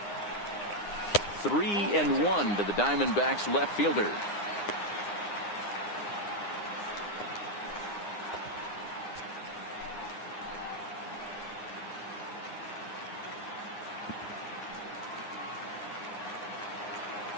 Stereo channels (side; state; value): right; late; 9.8 ms